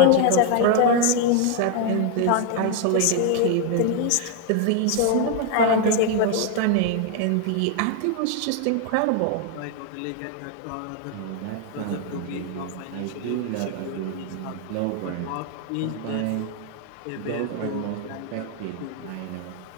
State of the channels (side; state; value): both; different; correlation 0.00